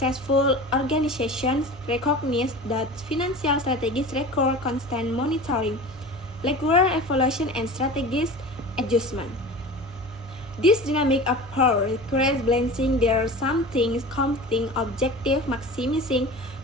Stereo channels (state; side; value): normal; both; correlation 0.35